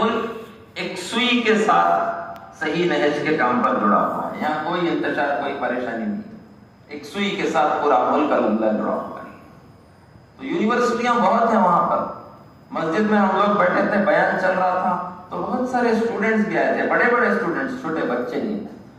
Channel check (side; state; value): both; identical; correlation 1.00